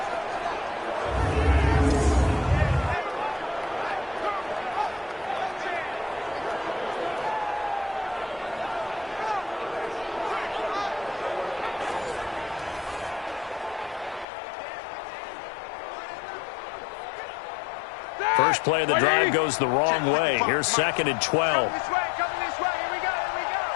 First play of the drive goes the wrong way. Here's 2nd and 12.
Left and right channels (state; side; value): drops out; right; at 14.2 s